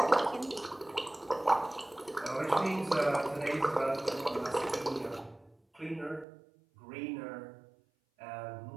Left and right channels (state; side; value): drops out; left; at 6.2 s